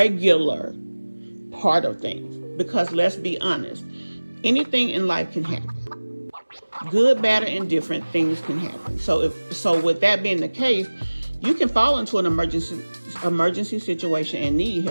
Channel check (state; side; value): inverted; both; correlation -1.00